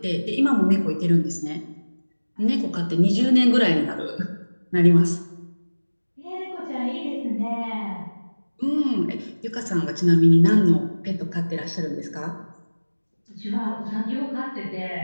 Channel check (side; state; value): both; inverted; correlation -1.00